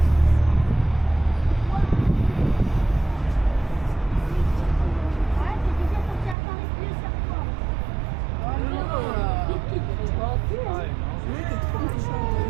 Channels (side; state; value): left; drops out; at 6.4 s